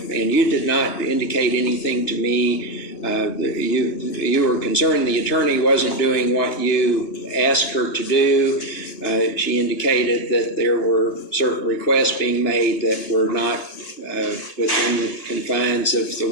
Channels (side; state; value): right; late; 2.9 ms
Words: you did not indicate anything to me. You were concerned the attorney wasn't doing what you asked her to do. She indicated that there were certain requests being made that were not within the confines of the